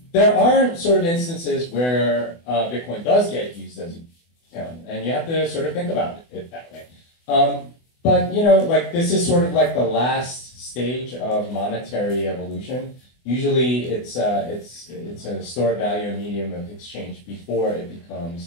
there are sort of instances where Bitcoin does get used as an account, and you have to sort of think about it that way. But you know, like this is sort of like the last stage of monetary evolution. Usually, it's a store of value, a medium of exchange before it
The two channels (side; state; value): right; late; 24 ms